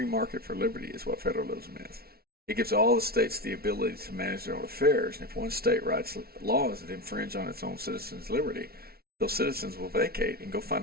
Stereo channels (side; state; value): left; late; 0.44 ms